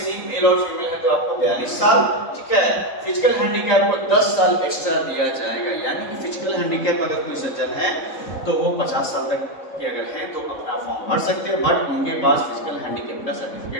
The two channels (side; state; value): right; late; 3.7 ms